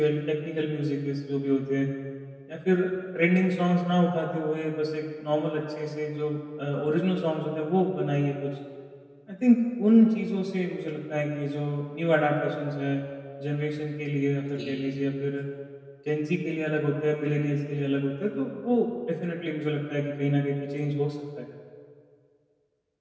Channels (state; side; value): identical; both; correlation 1.00